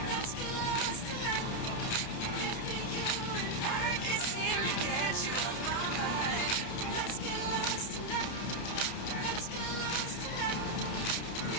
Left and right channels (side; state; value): right; late; 29 ms